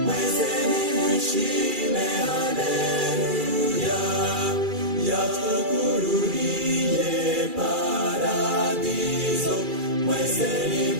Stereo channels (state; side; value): late; left; 2.4 ms